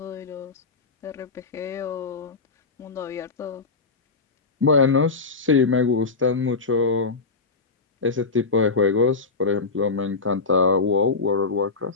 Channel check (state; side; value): quieter; right; 4.2 dB